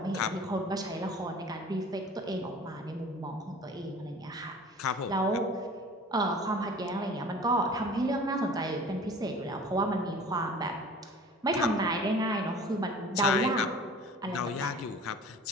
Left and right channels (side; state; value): both; normal; correlation 0.44